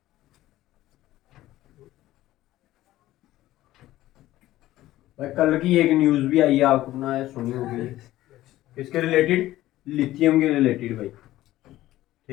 भाई कल की एक न्यूज भी आई है, आपने सुनी होगी, किसके रिलेटेड? लिथियम के रिलेटेड भाई।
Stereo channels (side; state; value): right; quieter; 15.3 dB